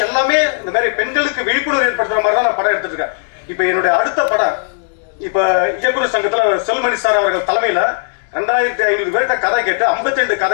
எல்லாமே இந்த மாதிரி பெண்களுக்கு விழிப்புணர்வு ஏற்படுத்துற மாதிரி தான் நான் படம் எடுத்துட்டு இருக்கேன். இப்ப என்னுடைய அடுத்த படம், இப்ப இயக்குநர் சங்கத்துல செல்மணி சார் அவர்கள் தலைமையில 2500 பேர்கிட்ட கதை கேட்டு 52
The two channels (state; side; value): silent; right; digital silence